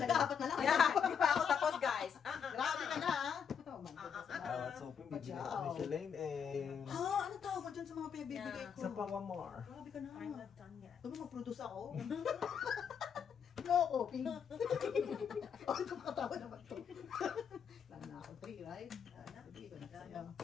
apat na lang. Yeah, di pa ako tapos guys. Grabe ka na ah. Oh my I was hoping bibigyan ako ni Shalane eh. Ha? Ano tawag mo dyan sa mga pinagbibigay ko? Sa Pawamar. Grabe ka na. I'm not done yet. Sabi mag-produce ako. No, coping. Oh, ito makatawa naman to. Lalo na ako 3, right? Sige, ko na sa'yo.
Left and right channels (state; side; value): quieter; right; 7.3 dB